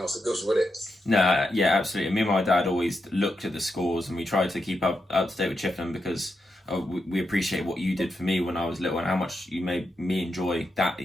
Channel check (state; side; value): normal; both; correlation 0.85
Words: else that goes with it. No, yeah, absolutely. Me and my dad always looked at the scores, and we tried to keep up to date with Chippenham because we appreciate what you did for me when I was little and how much you made me enjoy that